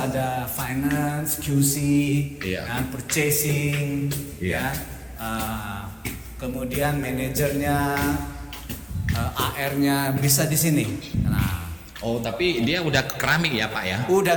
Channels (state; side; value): identical; both; correlation 1.00